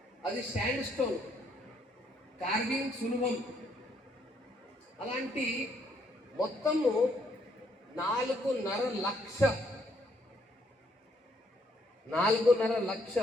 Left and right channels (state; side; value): normal; both; correlation 0.70